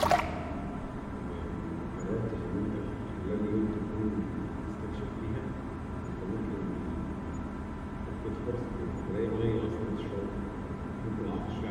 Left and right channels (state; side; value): identical; both; correlation 1.00